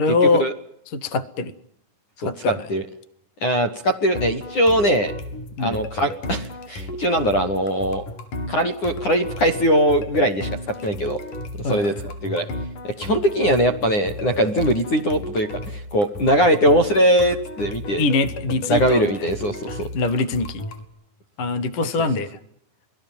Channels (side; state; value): right; late; 9.8 ms